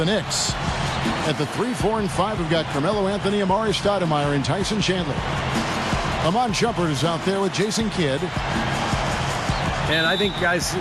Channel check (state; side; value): identical; both; correlation 1.00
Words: Knicks, at the 3, 4, and 5, we've got Carmelo Anthony, Amari Stoudemire, and Tyson Chandler. Amon Shumpert is out there with Jason Kidd. And I think, guys,